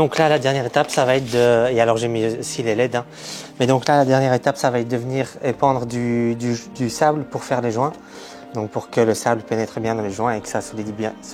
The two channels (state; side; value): identical; both; correlation 1.00